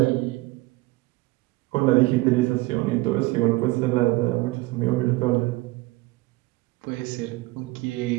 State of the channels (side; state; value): left; quieter; 21.0 dB